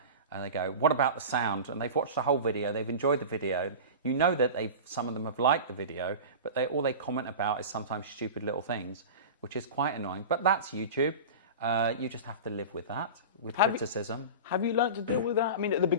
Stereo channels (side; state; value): both; inverted; correlation -0.30